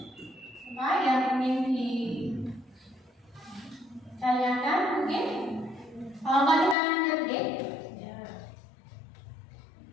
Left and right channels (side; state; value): right; drops out; at 6.8 s